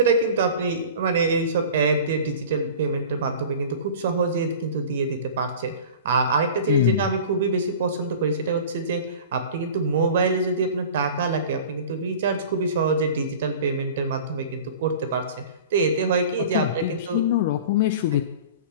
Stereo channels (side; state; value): both; inverted; correlation -0.39